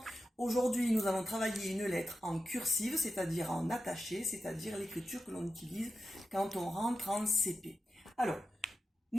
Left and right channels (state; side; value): normal; both; correlation 0.90